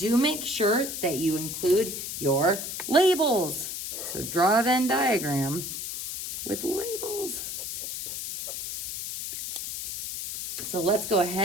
make sure that you include your labels. So draw a Venn diagram with labels. So let's go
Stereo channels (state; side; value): noise; left; hiss, 6 dB below the sound